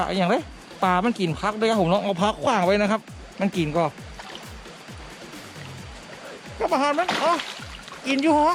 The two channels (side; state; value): both; identical; correlation 1.00